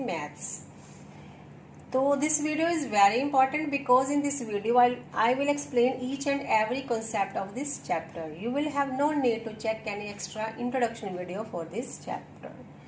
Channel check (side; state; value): both; identical; correlation 1.00